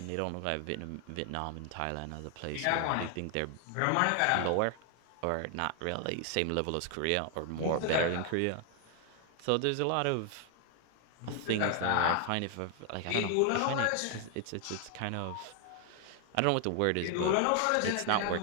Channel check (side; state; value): both; different; correlation 0.00